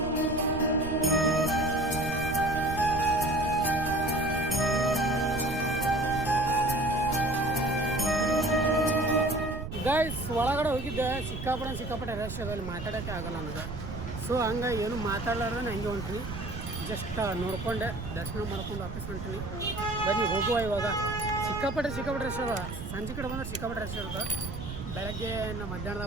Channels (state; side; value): noise; right; rumble, 7 dB below the sound